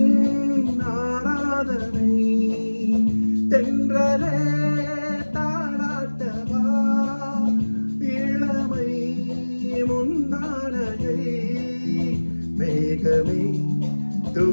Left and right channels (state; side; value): inverted; both; correlation -1.00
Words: ஆராதனை தென்றலே தாளாட்டவா இளமை முந்தானையை மேகமே